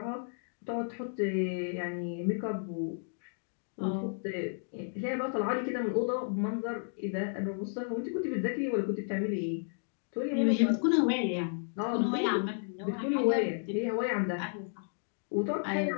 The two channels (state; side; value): silent; right; digital silence